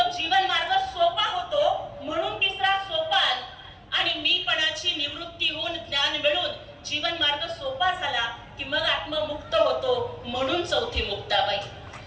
जीवन मार्ग सोपा होतो म्हणून तिसरा सोपान, आणि मीपणाची निवृत्ती होऊन ज्ञान मिळून जीवन मार्ग सोपा झाला की मग आत्ममुक्त होतो म्हणून चौथी मुक्ताबाई.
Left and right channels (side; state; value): both; identical; correlation 1.00